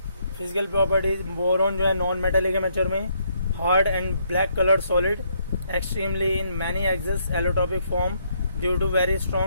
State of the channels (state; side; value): inverted; both; correlation -0.72